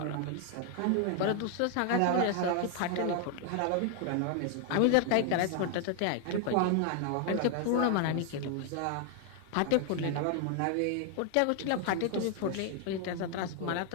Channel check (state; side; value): different; both; correlation 0.00